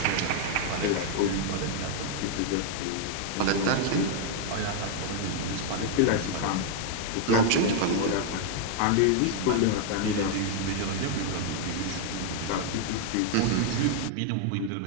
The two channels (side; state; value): both; different; correlation 0.00